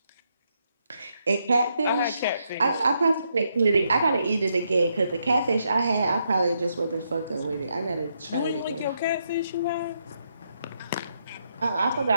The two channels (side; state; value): both; inverted; correlation -0.79